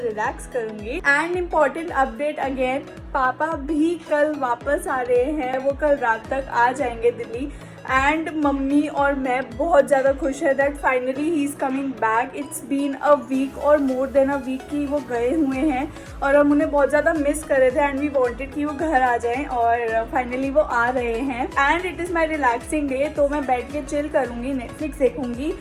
करूँगी। एंड इम्पॉर्टेंट अपडेट अगेन, पापा भी कल वापस आ रहे हैं। वो कल रात तक आ जाएंगे दिल्ली। एंड मम्मी और मैं बहुत ज़्यादा खुश है that finally he is coming back. It's been a week or more then a week की वो गए हुए हैं और हम उन्हें बहुत ज़्यादा मिस कर रहे थे एंड वी वांटेड कि वो घर आ जाएं और फाइनली वो आ रहे हैं। And it is my relaxing day, तो मैं बैठ के चिल करूँगी, नेटफ्लिक्स देखूँगी,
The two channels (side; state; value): both; identical; correlation 1.00